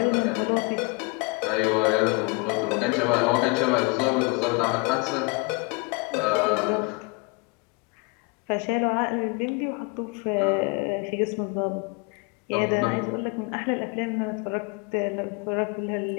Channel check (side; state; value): right; quieter; 29.2 dB